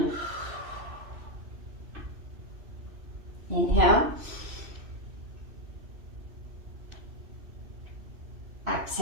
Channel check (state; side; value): late; left; 3.0 ms